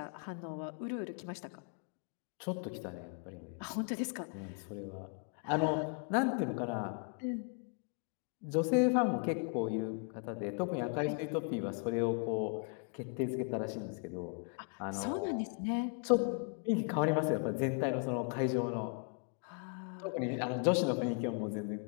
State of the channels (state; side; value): quieter; right; 39.9 dB